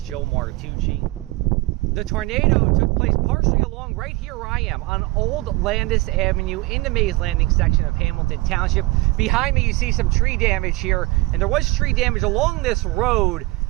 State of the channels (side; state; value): left; quieter; 21.7 dB